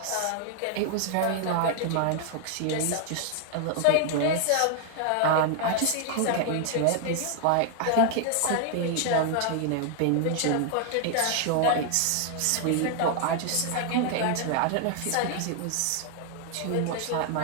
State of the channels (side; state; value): both; different; correlation 0.00